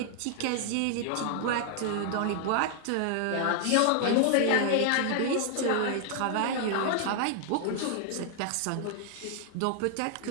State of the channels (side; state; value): both; different; correlation 0.00